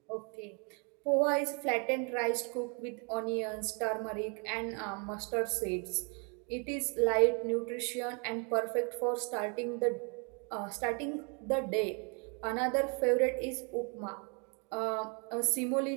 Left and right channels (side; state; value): left; quieter; 35.4 dB